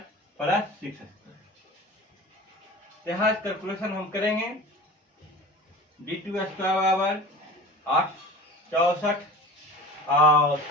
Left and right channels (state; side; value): normal; both; correlation 0.37